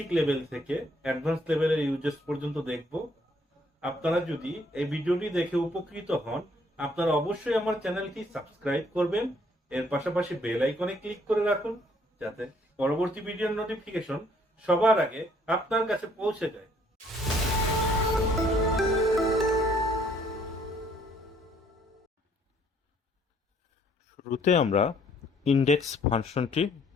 লেভেল থেকে অ্যাডভান্স লেভেলের ইউজেস পর্যন্ত দেখব। আপনারা যদি এই ভিডিওটি দেখে উপকৃত হন, আপনারা অবশ্যই আমার চ্যানেলটি সাবস্ক্রাইব করবেন। এর পাশাপাশি বেল আইকনে ক্লিক করে রাখুন, যাতে পরবর্তী ভিডিওর নোটিফিকেশন সবার আগে আপনার কাছে পৌঁছে যায়। শুরুতে আমরা ইনডেক্স ফাংশনটি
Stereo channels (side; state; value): both; normal; correlation 0.64